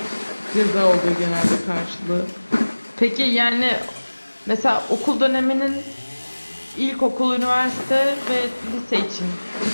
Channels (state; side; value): inverted; both; correlation -1.00